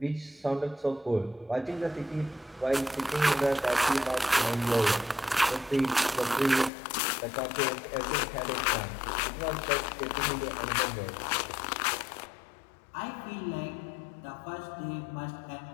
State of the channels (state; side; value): drops out; right; at 6.7 s